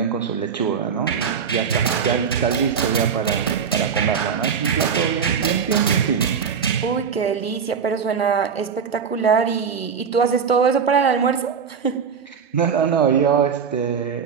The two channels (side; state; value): left; quieter; 6.6 dB